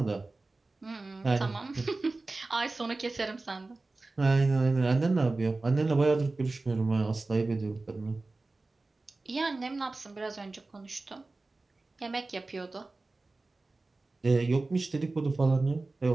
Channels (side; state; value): left; quieter; 3.3 dB